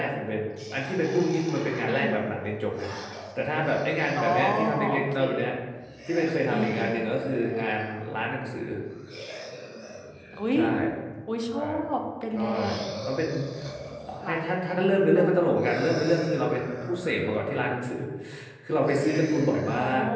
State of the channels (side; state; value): both; identical; correlation 1.00